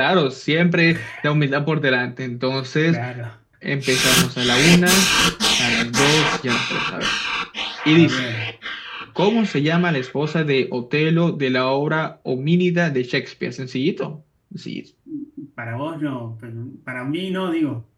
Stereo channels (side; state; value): both; identical; correlation 1.00